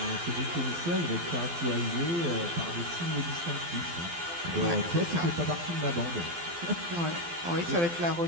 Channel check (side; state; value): left; late; 12 ms